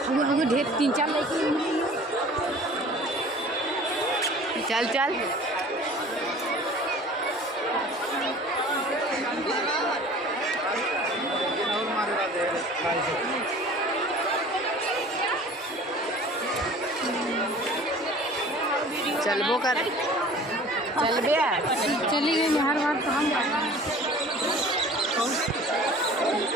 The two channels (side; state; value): both; normal; correlation 0.45